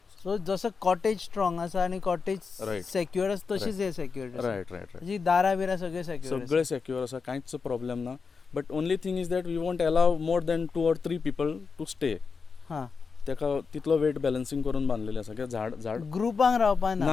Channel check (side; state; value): right; quieter; 5.1 dB